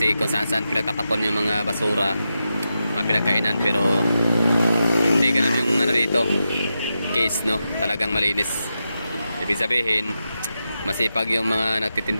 kung saan-saan pinagtatapon yung mga basura, mga pinagkainan, pero hindi ganun yung ano dito. Case, no? Talagang malinis. Ibig sabihin, masipag yung mga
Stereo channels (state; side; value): inverted; both; correlation -0.89